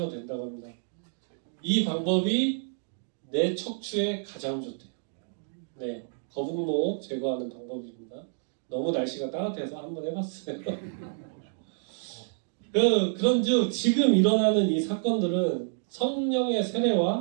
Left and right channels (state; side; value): silent; left; digital silence